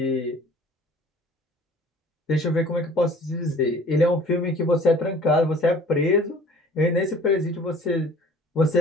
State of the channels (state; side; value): normal; both; correlation 0.50